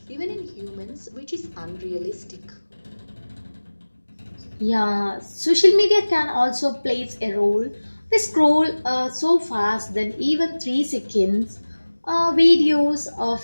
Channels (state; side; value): inverted; both; correlation -1.00